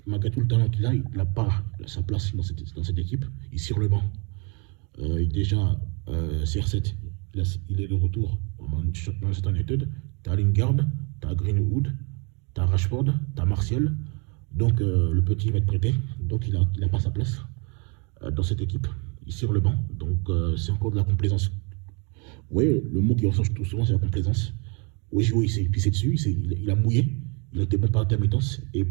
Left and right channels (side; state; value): left; quieter; 33.5 dB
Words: Malgré tout le talent qu'il a, il n'a pas sa place dans cette équipe. Il est sur le banc. Déjà, CR7, il est de retour dans Manchester United. Tu as Lingard, tu as Greenwood, tu as Rashford, tu as Martial. Donc le petit va être prêté. Donc il n'a pas sa place dans cette équipe. Il est sur le banc. Donc c'est encore de la complaisance. Oui, le mot qui ressort tout souvent, c'est la complaisance. Oui, il s'est pissé dessus, il a mouillé. Il a été bon par intermittence et